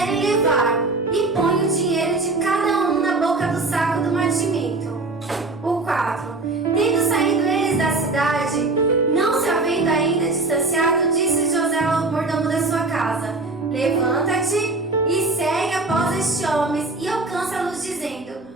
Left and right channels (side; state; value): left; quieter; 3.3 dB